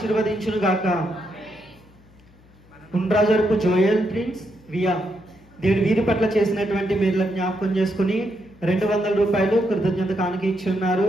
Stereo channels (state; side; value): noise; left; hum, 27 dB below the sound